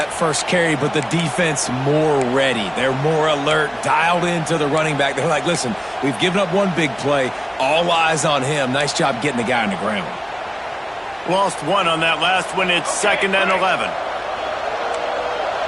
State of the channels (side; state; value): both; identical; correlation 1.00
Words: first carry, but the defense more ready. They're more alert, dialed into the running back. They're like, listen, we've given up one big play. All eyes on him. Nice job getting the guy on the ground. Lost one on that last one. It's 2nd and 11.